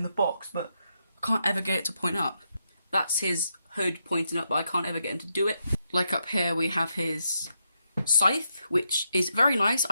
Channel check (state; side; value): inverted; both; correlation -0.82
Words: the box, but I can't ever get it to point up. That's his hood pointing up, but I can't ever get him to do it. Like up here, we have his scythe, which is very nice.